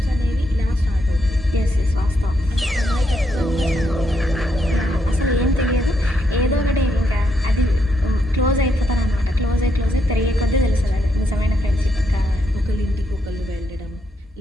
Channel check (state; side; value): normal; both; correlation 0.78